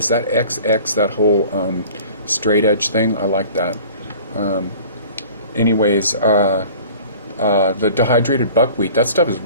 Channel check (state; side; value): inverted; both; correlation -0.45